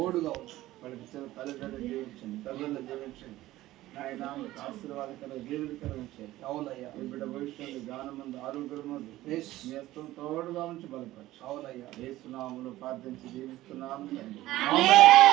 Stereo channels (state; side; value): quieter; left; 16.0 dB